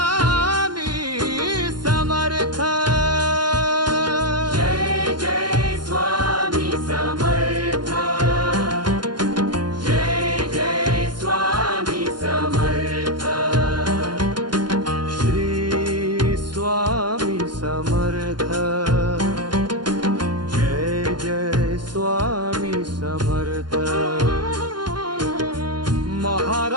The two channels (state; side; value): late; left; 0.71 ms